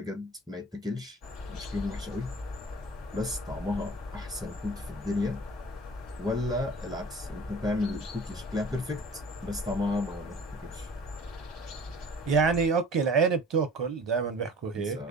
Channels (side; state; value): both; normal; correlation 0.45